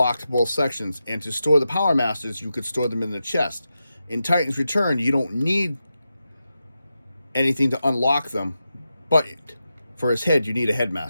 both sections. And to store the Power Masters, you could store them in the chest. In Titan's Return, you don't need anything to unlock them, but for his head, you need a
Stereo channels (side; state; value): both; inverted; correlation -0.89